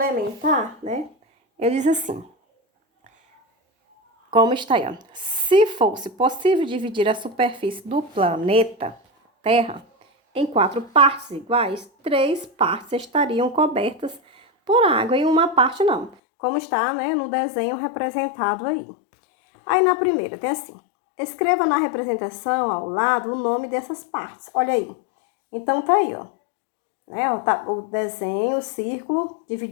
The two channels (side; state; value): right; drops out; at 16.2 s